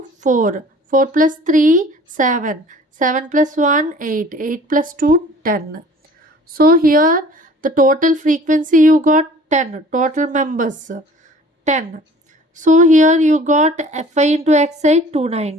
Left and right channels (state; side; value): normal; both; correlation 0.49